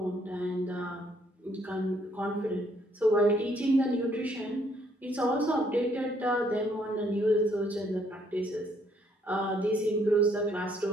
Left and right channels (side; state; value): both; normal; correlation 0.68